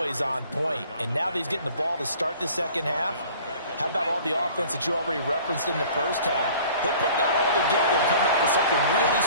on point. And now that he's getting the ball to start the second half, how about all the offense that you already referenced in the first half? He'll put that all together and come out with something really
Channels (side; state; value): both; inverted; correlation -0.49